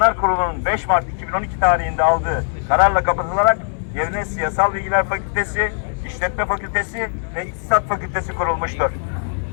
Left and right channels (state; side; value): silent; right; digital silence